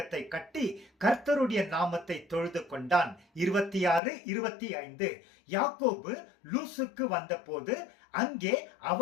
கட்டி கர்த்தருடைய நாமத்தை தொழுது கொண்டான். 26, 25. யாக்கோபு லூசுக்கு வந்தபோது அங்கே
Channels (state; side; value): drops out; right; at 4.0 s